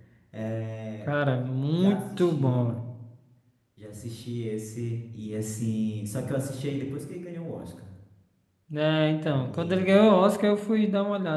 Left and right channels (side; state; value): both; identical; correlation 1.00